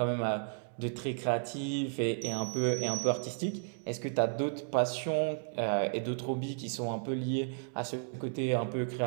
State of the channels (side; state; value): left; silent; digital silence